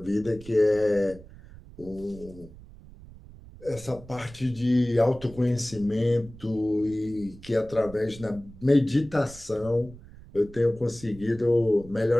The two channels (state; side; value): noise; right; rumble, 19 dB below the sound